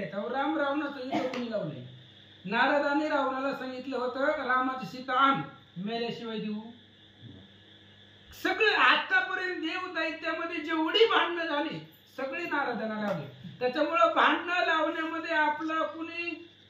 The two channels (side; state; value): both; identical; correlation 1.00